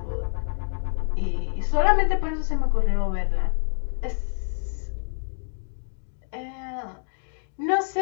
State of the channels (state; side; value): silent; right; digital silence